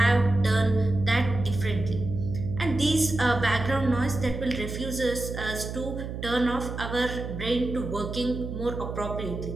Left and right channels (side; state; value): right; noise; hum, 7 dB below the sound